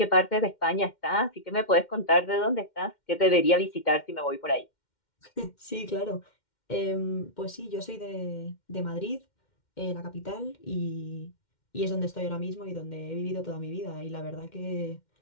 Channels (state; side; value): late; right; 2.1 ms